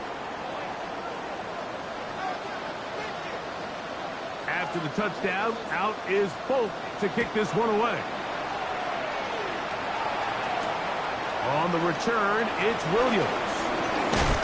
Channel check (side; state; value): both; identical; correlation 1.00